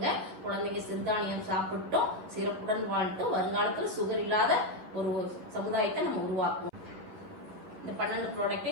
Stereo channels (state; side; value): late; left; 11 ms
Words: குழந்தைங்க சிறுதானியம் சாப்பிட்டோம், சிறப்புடன் வாழ்த்தும் வருங்காலத்துல சுகர் இல்லாத ஒரு சமுதாயத்தை நம்ம உருவாக்குவோம். இந்த 12